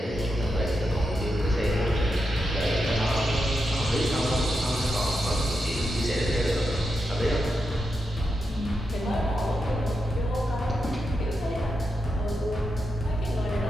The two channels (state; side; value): normal; both; correlation 0.86